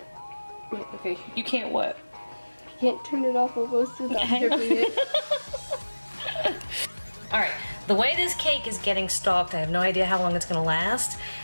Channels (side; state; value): both; inverted; correlation -1.00